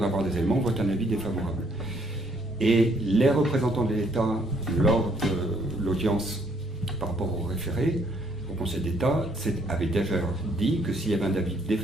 des éléments, vote un avis défavorable. » Et les représentants de l'État, lors de l'audience par rapport au référé, au Conseil d'État, avaient déjà dit que s'il y avait un avis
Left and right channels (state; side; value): normal; both; correlation 0.66